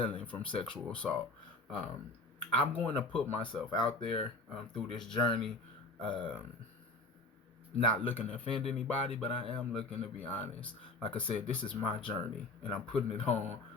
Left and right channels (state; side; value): quieter; right; 3.0 dB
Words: from sexual assault. Um, I'm going to put myself out there through this journey, um, not looking to offend anybody, but I am looking to be honest. Like I said, this is my journey, and I'm putting it on,